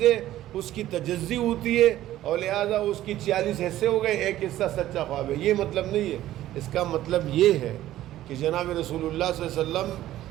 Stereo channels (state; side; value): quieter; left; 13.9 dB